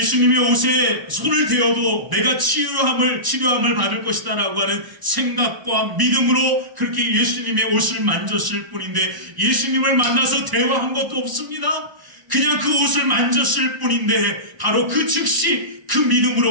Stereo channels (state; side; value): late; left; 1.0 ms